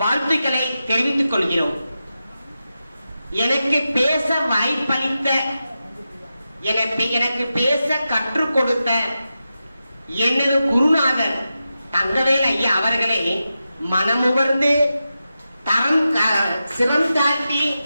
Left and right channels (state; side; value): inverted; both; correlation -0.91